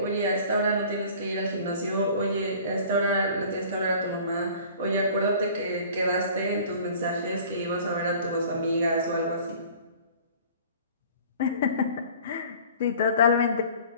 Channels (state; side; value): inverted; both; correlation -0.47